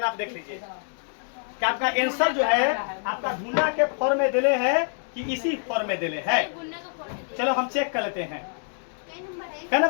आप देख लीजिए कि आपका आंसर जो है आपका गुना के फॉर्म में दिले है कि इसी फॉर्म में दिले है। चलो हम चेक कर लेते हैं। क्या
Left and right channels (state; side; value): silent; right; digital silence